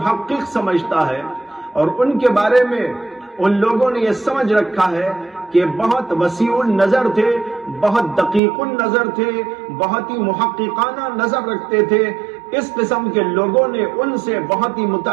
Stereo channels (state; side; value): drops out; left; at 8.4 s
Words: سمجھتا ہے، اور ان کے بارے میں ان لوگوں نے یہ سمجھ رکھا ہے کہ بہت وسیع النظر تھے، بہت دقیق النظر تھے، بہت ہی محققانہ نظر رکھتے تھے۔ اس قسم کے لوگوں نے ان سے بہت ہی